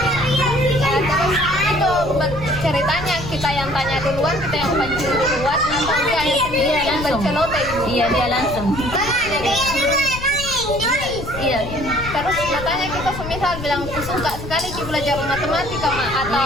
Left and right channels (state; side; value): noise; left; rumble, 10 dB below the sound